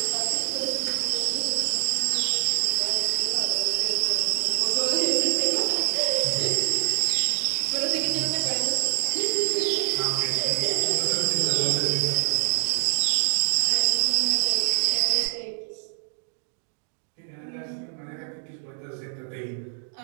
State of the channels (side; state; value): left; silent; digital silence